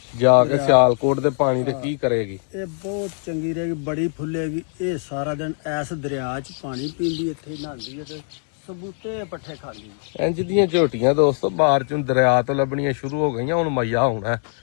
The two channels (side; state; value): right; silent; 58 dB below the other